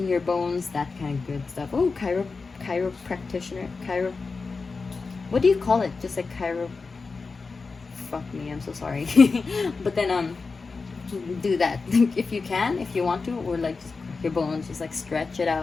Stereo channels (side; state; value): right; quieter; 4.3 dB